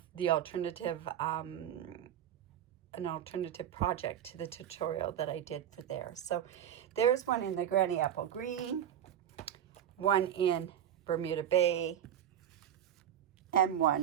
the alternative an alternative project to the tutorial that I did for there. So there's one in the granny apple green, one in Bermuda Bay, and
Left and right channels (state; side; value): quieter; left; 10.3 dB